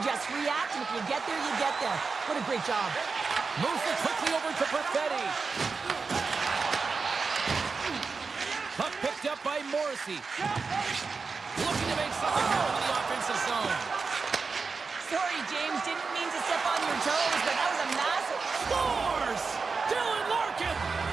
just react, and if you get there, you get there. What a great job. Moves it quickly over to Perfetti. Puck picked up by Morrissey. Looking to make something more in the offensive zone. Sorry, James. Didn't mean to step on your toes, but that was a massive... Scores! Dylan Larkin!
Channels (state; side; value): quieter; left; 4.7 dB